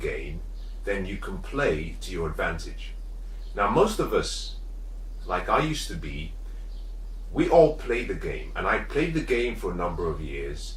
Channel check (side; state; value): both; identical; correlation 1.00